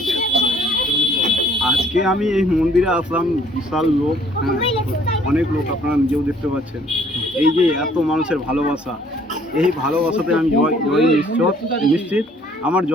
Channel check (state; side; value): normal; both; correlation 0.59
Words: আজকে আমি এই মন্দিরে আসলাম, বিশাল লোক, অনেক লোক, আপনারা নিজেও দেখতে পাচ্ছেন। এই যে এত মানুষের ভালোবাসা, এই ভালোবাসাতে আমি জয় নিশ্চিত আমার